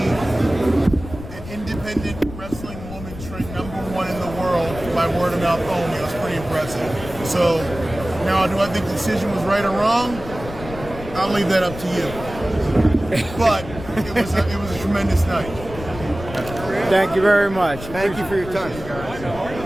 an independent wrestling woman trained #1 in the world by word of mouth only. It was pretty impressive. So now, do I think the decision was right or wrong? I'll leave that up to you. But it was a tremendous night. Thank you very much. Thank you for your time.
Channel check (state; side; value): noise; left; rumble, 12 dB below the sound